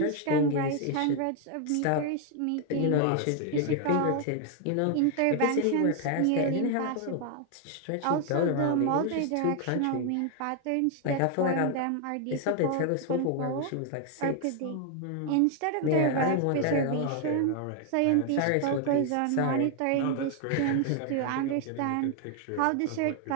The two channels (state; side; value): different; both; correlation 0.00